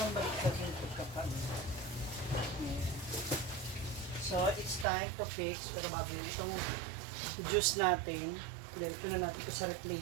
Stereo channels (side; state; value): left; drops out; at 4.9 s